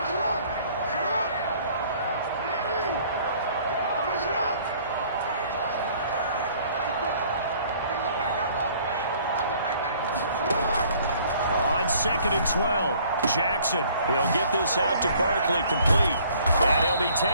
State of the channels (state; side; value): inverted; both; correlation -0.57